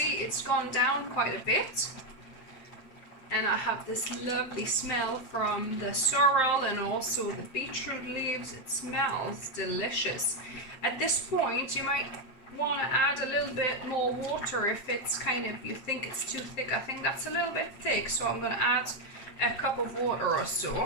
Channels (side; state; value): right; late; 7.9 ms